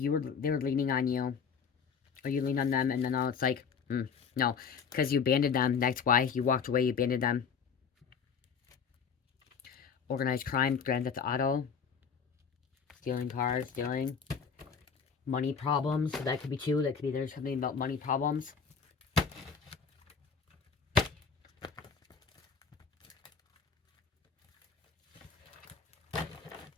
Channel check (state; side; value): quieter; right; 6.2 dB